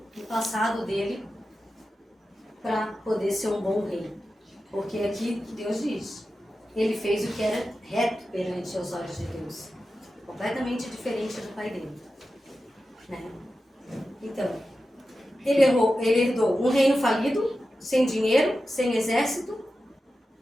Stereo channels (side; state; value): both; normal; correlation 0.92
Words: no passado dele para poder ser um bom rei? Porque aqui Deus diz, ele fez o que era reto perante os olhos de Deus. Completamente diferente do pai dele. Né? Então, ele herdou um reino falido, sem dinheiro, sem exército,